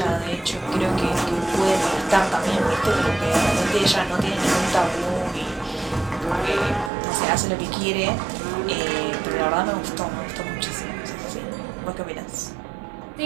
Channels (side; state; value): left; drops out; at 6.9 s